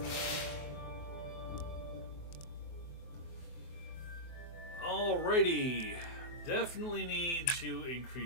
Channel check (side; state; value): right; late; 23 ms